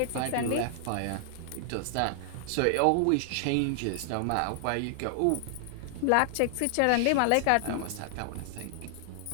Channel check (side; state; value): both; different; correlation 0.00